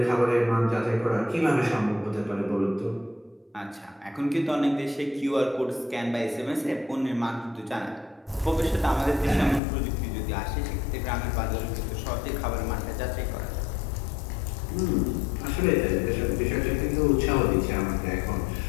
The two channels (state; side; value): drops out; right; at 9.6 s